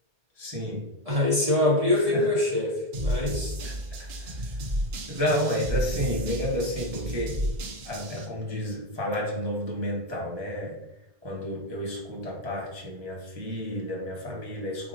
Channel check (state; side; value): late; left; 1.7 ms